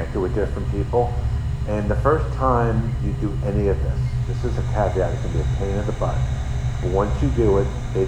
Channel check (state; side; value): identical; both; correlation 1.00